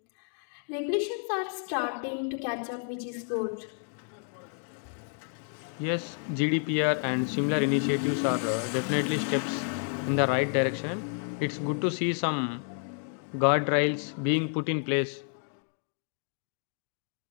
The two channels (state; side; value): silent; right; 58 dB below the other